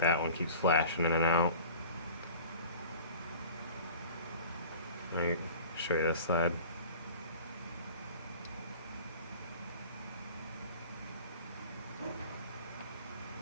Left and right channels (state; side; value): inverted; both; correlation -0.41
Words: one keeps flashing in and out. Let me show you this side.